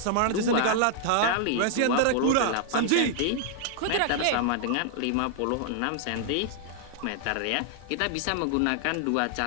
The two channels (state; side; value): different; both; correlation -0.01